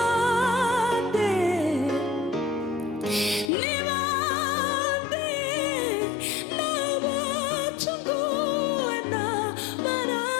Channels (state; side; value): drops out; right; at 3.5 s